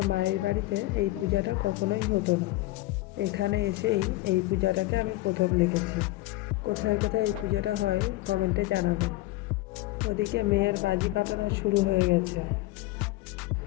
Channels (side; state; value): right; quieter; 18.1 dB